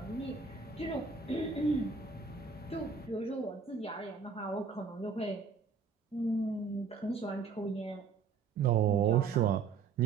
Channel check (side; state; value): left; quieter; 5.3 dB